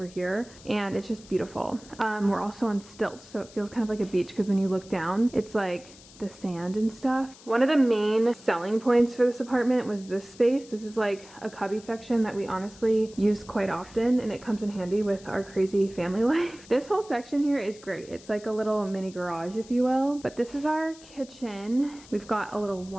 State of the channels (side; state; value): left; noise; hiss, 21 dB below the sound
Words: here, and it's just beautiful. We're also on stilts, so it feels kind of like a beach because when you look down, it's like the sand and stuff. One of the main selling points for this apartment was this space. This is like a cubby section that we honestly use quite often, and it comes in handy with our crazy family life. This whole section here is great. It's like a little mini garage, if you will. But this is our kitchen. We've got a little